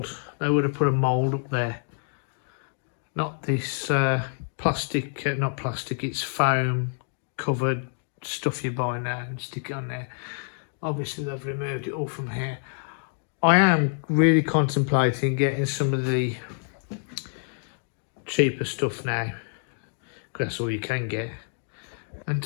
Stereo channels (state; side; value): silent; right; 60 dB below the other